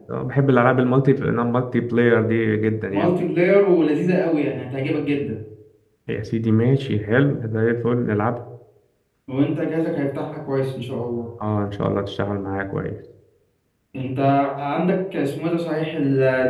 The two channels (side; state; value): both; identical; correlation 1.00